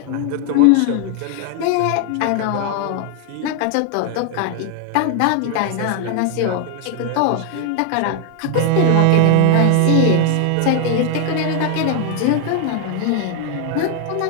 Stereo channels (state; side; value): different; both; correlation 0.00